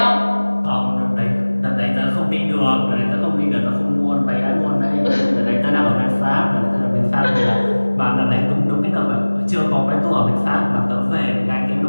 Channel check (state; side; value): inverted; both; correlation -1.00